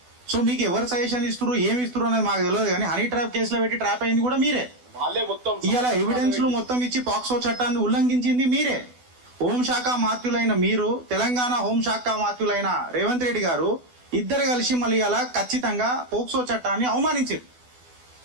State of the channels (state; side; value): late; left; 12 ms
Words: సో మీకు ఎవరు సజెషన్ ఇస్తున్నారు, ఏమి ఇస్తున్నారు అనేది మాకు తెలియదు, కానీ హనీ ట్రాప్ కేసులో పెట్టి ట్రాప్ అయింది కూడా మీరే. ఇలా ఎవిడెన్స్లు మొత్తం ఇచ్చి పాక్సో చట్టాన్ని ఉల్లంఘించింది మీరే. హోంశాఖ మాత్యులైన మీరు, తెలంగాణ హోంశాఖ మాత్యులైన రేవంత్ రెడ్డి గారు ఇద్దరు కలిసి మళ్ళీ ఇలా ఖచ్చితంగా పోక్సో చట్టాన్ని అవమానించారు.